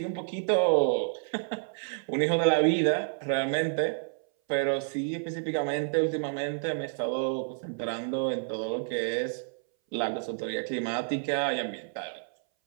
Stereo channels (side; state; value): left; silent; 58 dB below the other